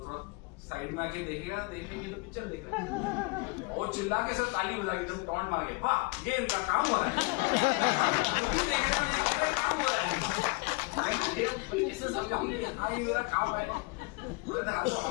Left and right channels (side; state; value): right; quieter; 27.6 dB